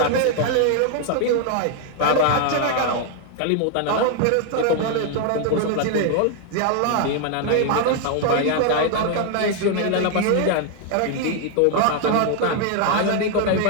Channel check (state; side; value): different; both; correlation 0.00